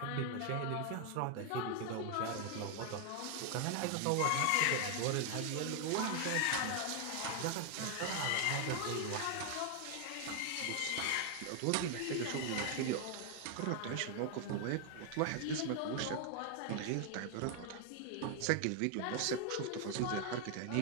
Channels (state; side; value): different; both; correlation 0.00